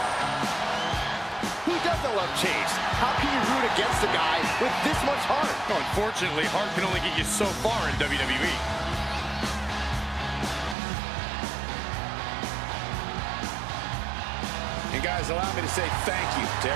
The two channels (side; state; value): left; drops out; at 10.8 s